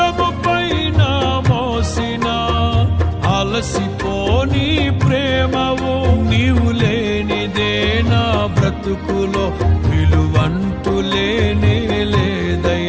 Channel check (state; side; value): identical; both; correlation 1.00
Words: పైన మోసిన అలసిపోని ప్రేమవు. నీవు లేనిదే నా బ్రతుకులో విలువంటూ లేనే